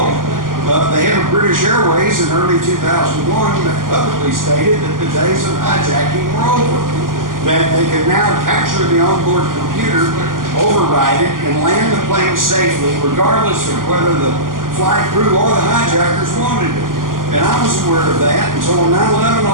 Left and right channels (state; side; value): late; left; 0.91 ms